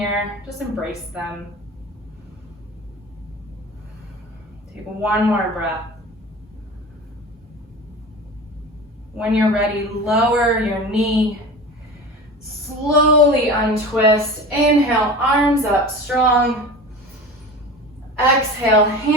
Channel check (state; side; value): normal; both; correlation 0.33